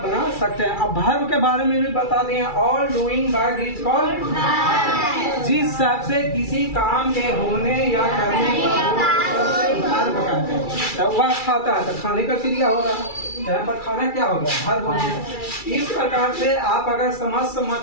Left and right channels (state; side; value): late; right; 2.3 ms